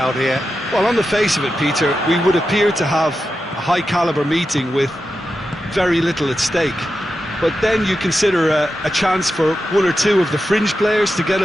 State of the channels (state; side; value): normal; both; correlation 0.90